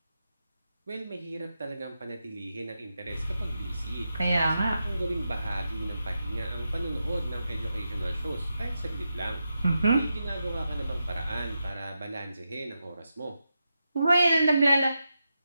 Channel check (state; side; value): inverted; both; correlation -0.88